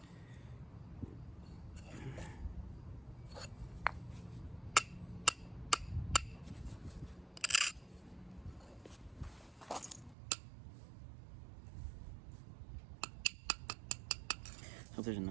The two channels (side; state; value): left; drops out; at 10.2 s